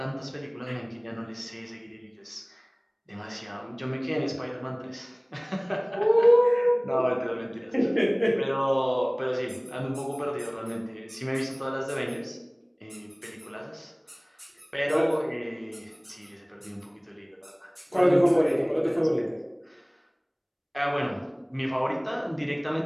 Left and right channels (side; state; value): both; identical; correlation 1.00